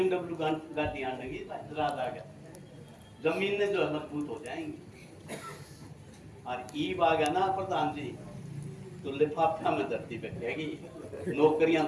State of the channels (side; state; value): both; identical; correlation 1.00